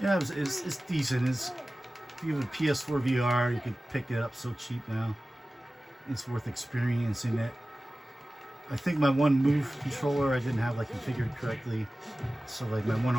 Yeah, it's decent. If you have a PS4 VR, you can pick it up so cheap now. It's worth experiencing it. I think my one move controller I didn't have like configured correctly, so like my one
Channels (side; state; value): both; normal; correlation 0.96